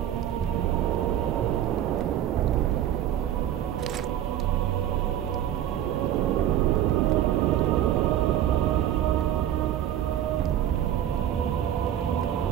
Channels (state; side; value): quieter; left; 11.3 dB